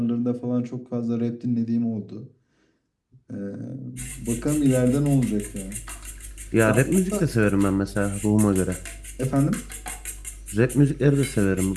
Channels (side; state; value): both; identical; correlation 1.00